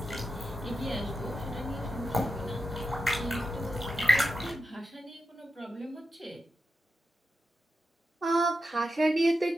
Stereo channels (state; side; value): normal; both; correlation 0.88